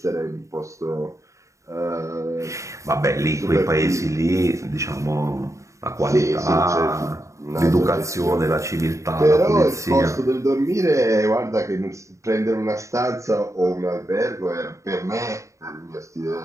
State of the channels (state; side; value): late; left; 0.15 ms